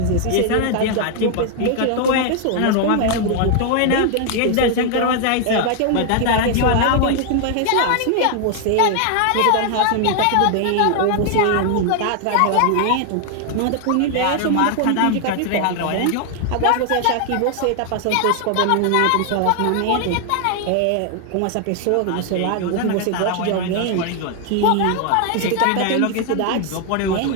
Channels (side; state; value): both; different; correlation 0.00